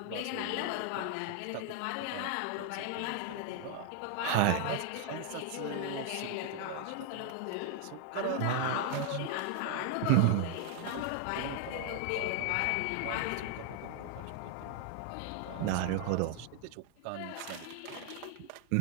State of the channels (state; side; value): different; both; correlation 0.00